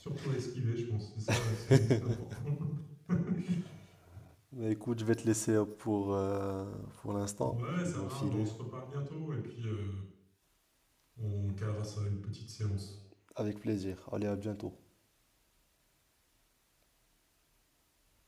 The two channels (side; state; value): both; identical; correlation 1.00